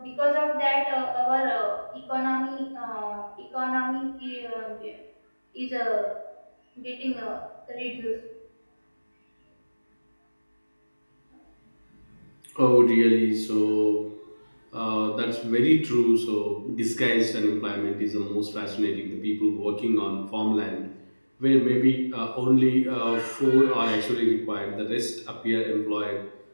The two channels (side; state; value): both; inverted; correlation -1.00